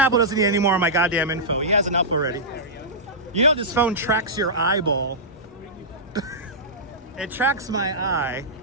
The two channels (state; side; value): normal; both; correlation -0.15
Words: doesn't need any more of my goddamn info. He has enough already. You know this phone tracks your eyeball. It tracks my eye.